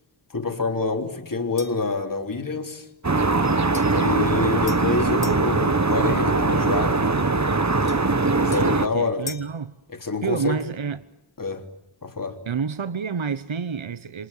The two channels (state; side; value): normal; both; correlation 0.01